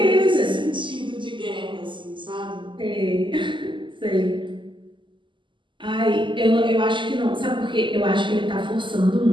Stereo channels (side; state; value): left; late; 0.24 ms